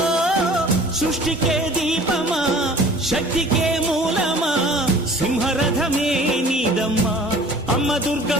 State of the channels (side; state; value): both; normal; correlation 0.47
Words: సృష్టికే దీపమా శక్తికే మూలమా సింహరథమే నీదమ్మా అమ్మ